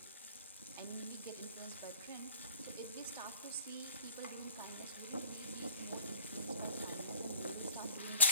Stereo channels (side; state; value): both; inverted; correlation -0.47